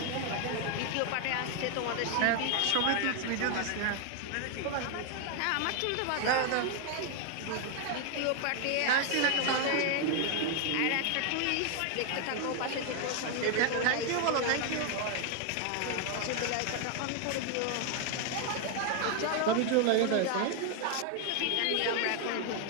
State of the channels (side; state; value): both; different; correlation 0.00